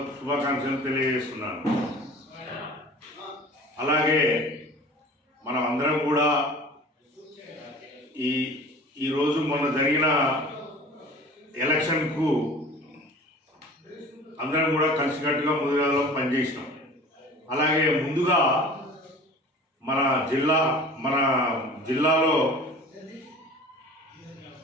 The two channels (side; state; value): both; normal; correlation 0.42